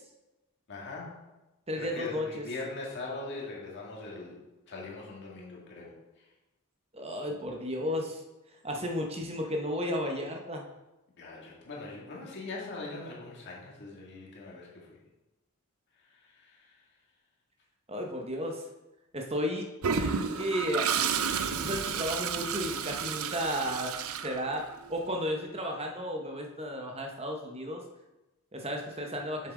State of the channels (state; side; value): normal; both; correlation 0.26